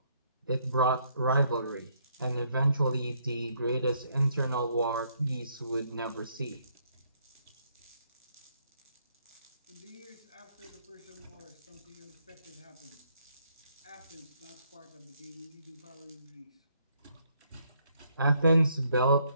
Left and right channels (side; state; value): both; inverted; correlation -0.71